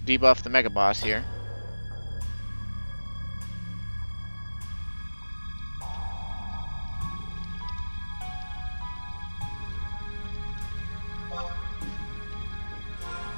debuff the Mega Boss here.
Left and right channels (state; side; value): inverted; both; correlation -1.00